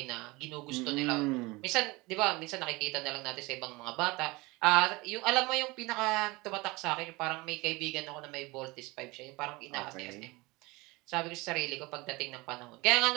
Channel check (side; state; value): left; quieter; 23.2 dB